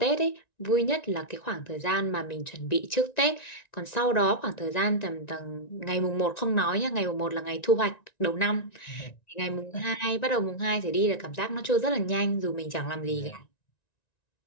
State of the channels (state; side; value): late; right; 1.9 ms